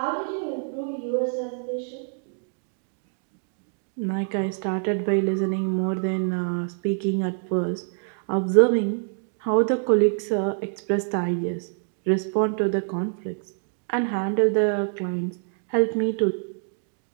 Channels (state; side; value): silent; left; digital silence